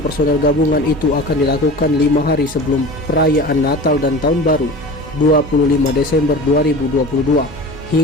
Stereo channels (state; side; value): normal; both; correlation 0.35